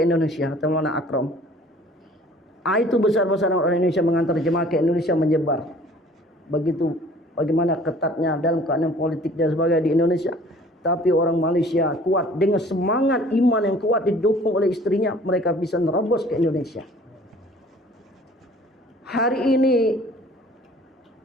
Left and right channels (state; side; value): normal; both; correlation 0.51